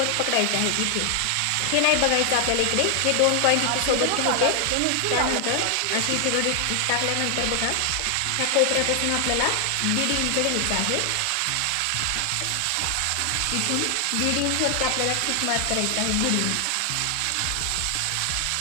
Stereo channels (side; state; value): both; different; correlation 0.00